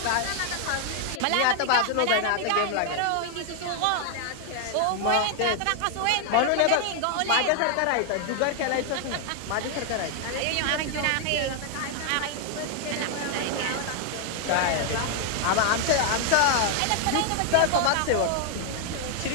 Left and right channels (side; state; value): both; different; correlation 0.00